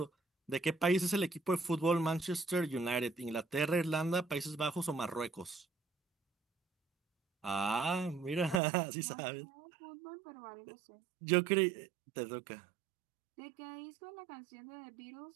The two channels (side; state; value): left; drops out; at 8.6 s